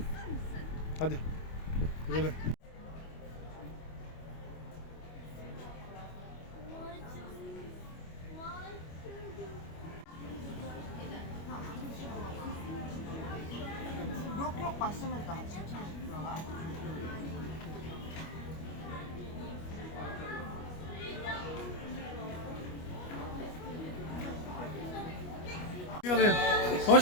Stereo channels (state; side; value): late; right; 25 ms